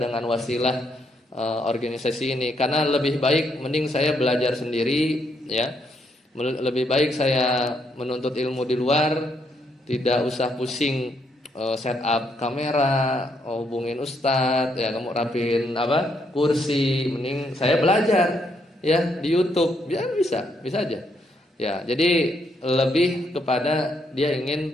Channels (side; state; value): both; normal; correlation 0.75